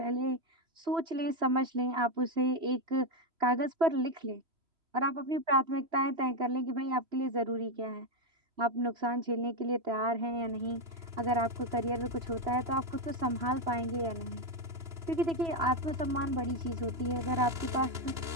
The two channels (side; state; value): left; late; 3.0 ms